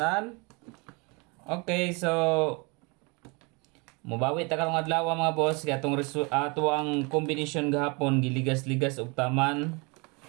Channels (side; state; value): left; quieter; 30.0 dB